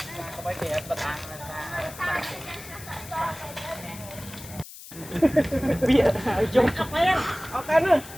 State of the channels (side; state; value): left; noise; hiss, 15 dB below the sound